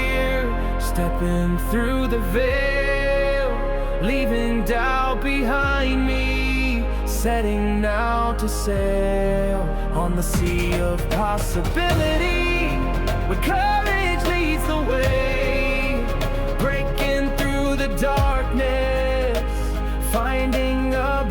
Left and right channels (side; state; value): both; identical; correlation 1.00